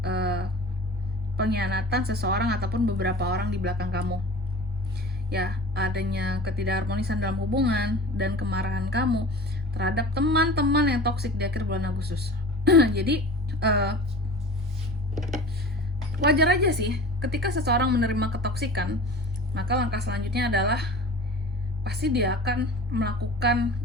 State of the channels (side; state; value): both; normal; correlation 0.39